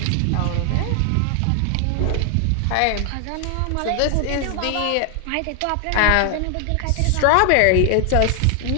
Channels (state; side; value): different; both; correlation 0.00